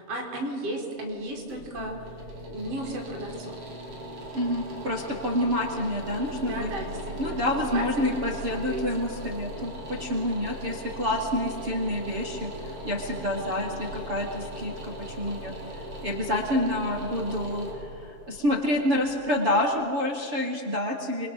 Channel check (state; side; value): late; left; 7.0 ms